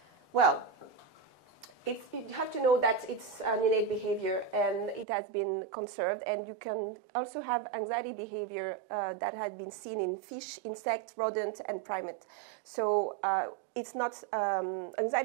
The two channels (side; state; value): left; drops out; at 5.1 s